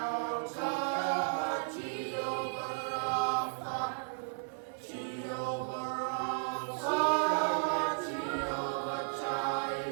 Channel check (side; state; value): left; silent; digital silence